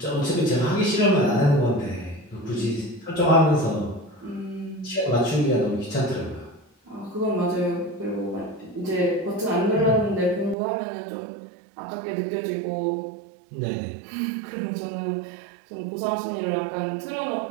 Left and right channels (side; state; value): left; drops out; at 10.6 s